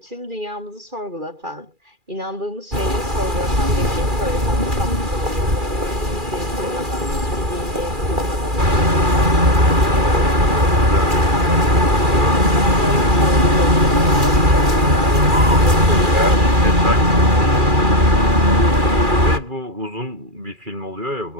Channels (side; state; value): left; late; 2.4 ms